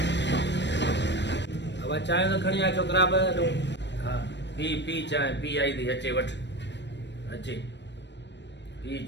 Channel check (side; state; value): right; late; 0.51 ms